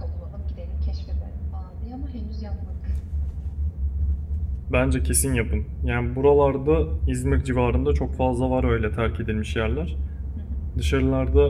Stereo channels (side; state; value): both; identical; correlation 1.00